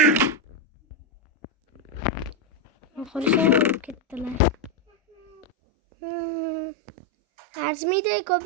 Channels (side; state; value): left; drops out; at 5.5 s